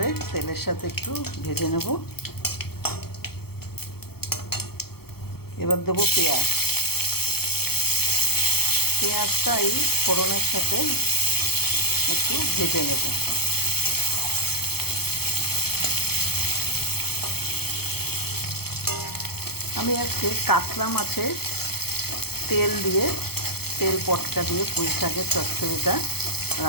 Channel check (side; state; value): right; late; 0.96 ms